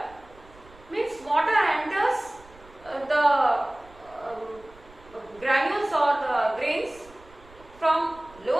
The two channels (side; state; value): right; noise; rumble, 24 dB below the sound